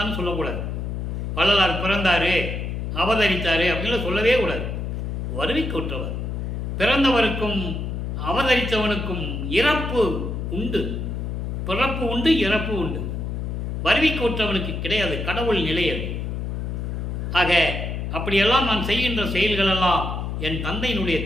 சொல்லக்கூடாது. வள்ளலார் பிறந்தாரு, அவதரித்தாரு அப்படின்னு சொல்லவே கூடாது. வருவிக்க உற்றவர். பிறந்தவருக்கும் அவதரித்தவனுக்கும் இறப்பு உண்டு, பிறப்பு உண்டு, இறப்பு உண்டு. வருவிக்க உற்றவனுக்கு கிடையாது, கடவுள் நிலையது. ஆக அப்படியெல்லாம் நான் செய்கின்ற செயல்களெல்லாம் என் தந்தையினுடைய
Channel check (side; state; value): left; noise; hum, 3 dB below the sound